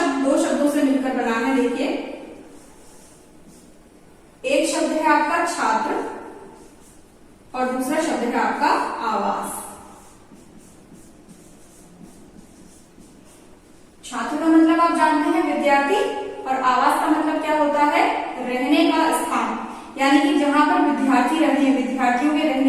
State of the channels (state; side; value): identical; both; correlation 1.00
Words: दो शब्दों से मिलकर बना है। देखिए, एक शब्द है आपका छात्र और दूसरा शब्द है आपका आवास। छात्र का मतलब आप जानते हैं विद्यार्थी, और आवास का मतलब क्या होता है, रहने का स्थान, यानी कि जहां पर विद्यार्थी रहते हैं, विद्यार्थियों के